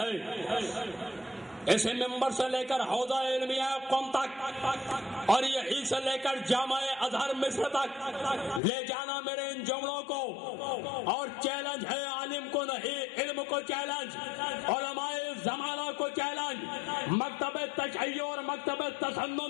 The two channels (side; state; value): right; drops out; at 8.6 s